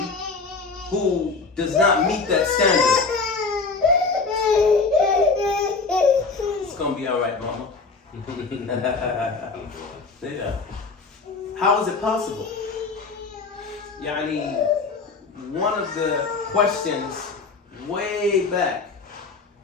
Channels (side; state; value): right; quieter; 4.3 dB